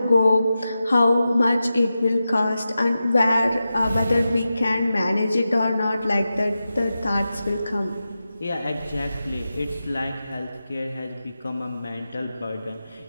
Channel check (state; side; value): inverted; both; correlation -0.92